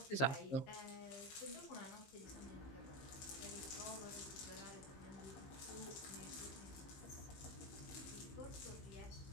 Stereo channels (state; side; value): late; right; 15 ms